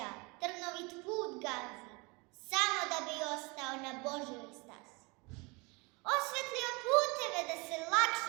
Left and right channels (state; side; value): quieter; left; 27.7 dB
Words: trnovit put gazi, samo da bi ostao na Božjoj stazi. Osvetlio puteve da se